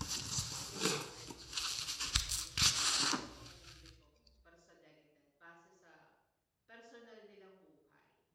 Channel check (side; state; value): both; identical; correlation 1.00